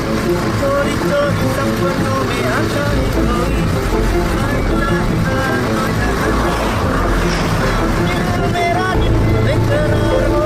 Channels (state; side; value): identical; both; correlation 1.00